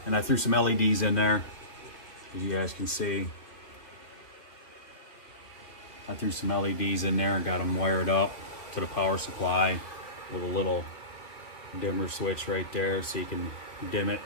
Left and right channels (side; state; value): right; late; 2.9 ms